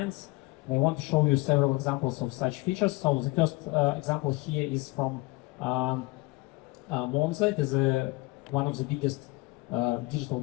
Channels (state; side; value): quieter; right; 22.7 dB